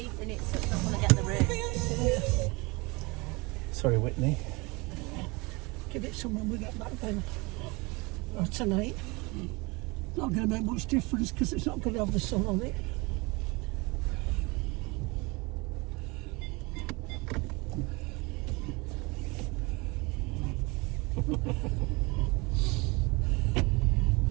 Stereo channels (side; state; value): left; quieter; 26.1 dB